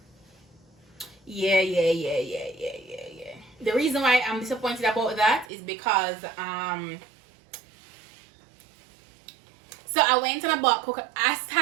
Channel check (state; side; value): drops out; left; at 5.5 s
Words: Yeah. The reason why I'm disappointed about that is because so I went and I bought coconut. I